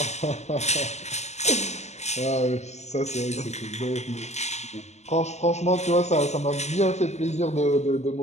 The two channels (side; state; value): right; late; 0.33 ms